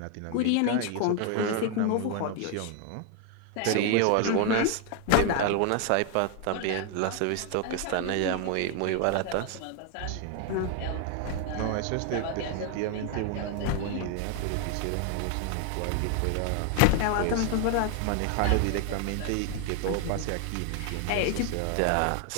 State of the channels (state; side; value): different; both; correlation 0.01